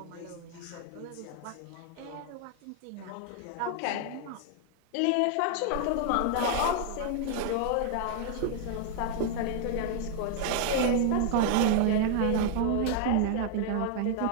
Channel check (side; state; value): both; different; correlation 0.00